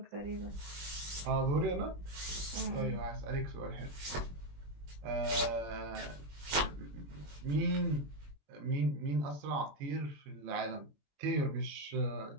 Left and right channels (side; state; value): left; late; 21 ms